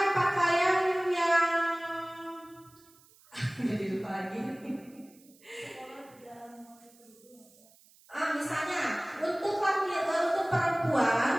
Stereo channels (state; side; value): noise; right; hiss, 28 dB below the sound